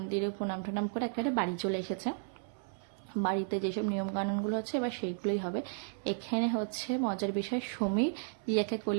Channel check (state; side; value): silent; left; 55 dB below the other